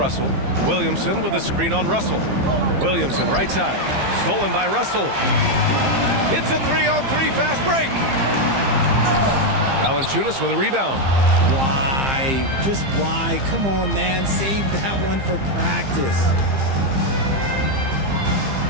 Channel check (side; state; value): left; late; 15 ms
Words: Williamson with a screen on Russell. Williamson right side. Stolen by Russell. It's a 3-on-3 fast break. Valanciunas with a rebound. Why? Just why? Come on, man. Save that one for practice.